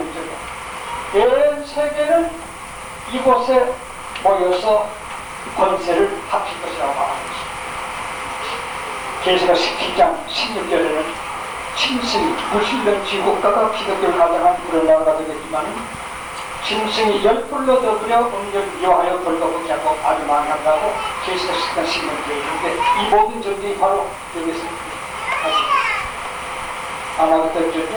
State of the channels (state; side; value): identical; both; correlation 1.00